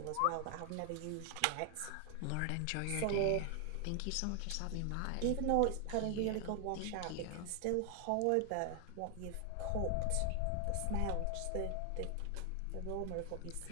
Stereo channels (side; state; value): both; different; correlation 0.00